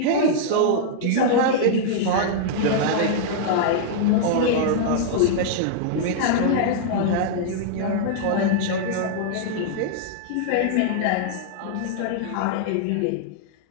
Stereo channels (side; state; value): both; different; correlation -0.01